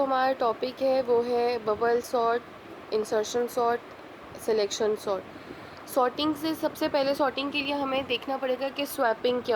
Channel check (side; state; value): both; identical; correlation 1.00